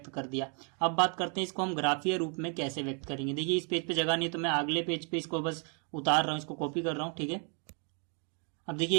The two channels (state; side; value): quieter; left; 38.9 dB